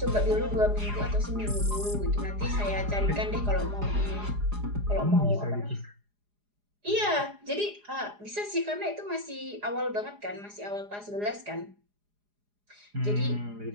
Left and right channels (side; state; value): left; late; 4.9 ms